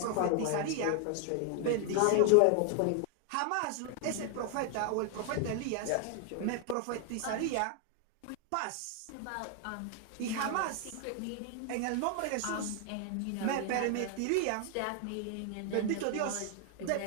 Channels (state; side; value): different; both; correlation 0.00